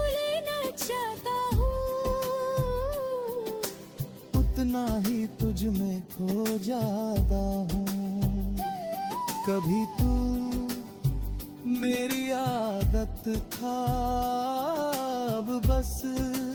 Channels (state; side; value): identical; both; correlation 1.00